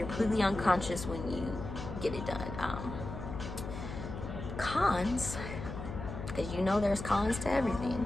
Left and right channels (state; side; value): noise; left; hum, 8 dB below the sound